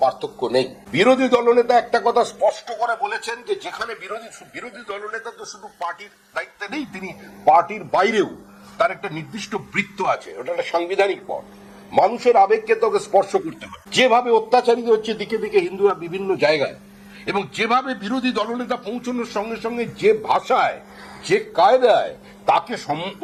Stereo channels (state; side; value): identical; both; correlation 1.00